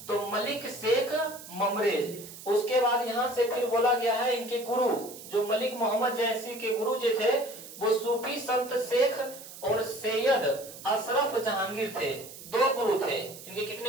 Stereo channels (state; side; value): noise; right; hiss, 15 dB below the sound